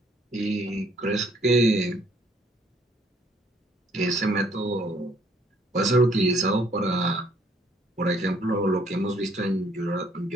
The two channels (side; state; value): both; normal; correlation 0.64